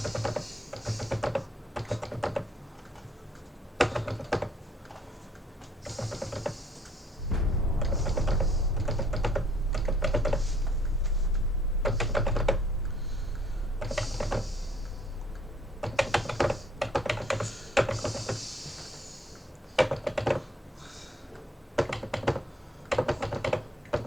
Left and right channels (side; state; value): both; normal; correlation 0.61